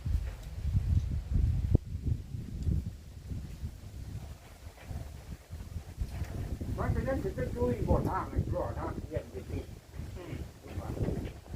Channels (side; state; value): both; identical; correlation 1.00